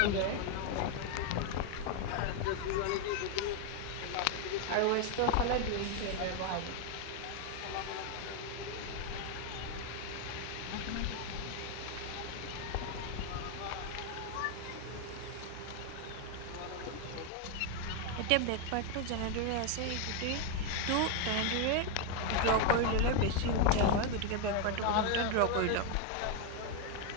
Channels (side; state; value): both; different; correlation 0.01